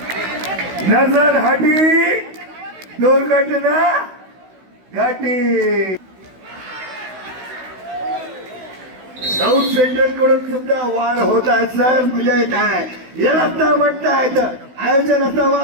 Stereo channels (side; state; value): left; late; 16 ms